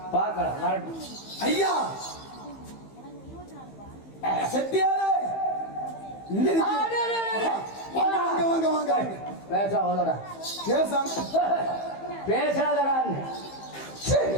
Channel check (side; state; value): right; late; 15 ms